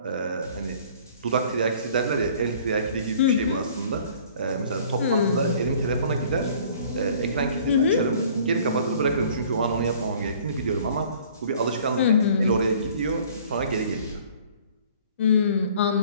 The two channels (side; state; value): both; inverted; correlation -0.52